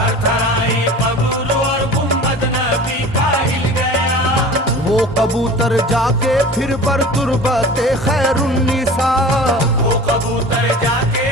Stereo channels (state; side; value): normal; both; correlation 0.39